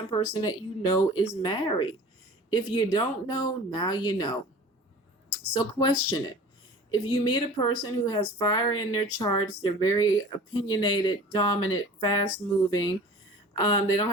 person that you know is married. If you don't know, now you know. So, question it. If you meet a person who has fire in their charts, they're very opinionated, dominant, fast moving. They don't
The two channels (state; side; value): normal; both; correlation 0.42